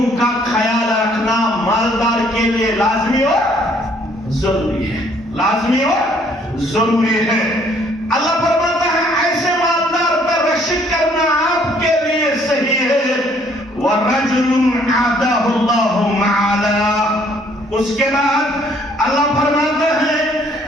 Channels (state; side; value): normal; both; correlation 0.63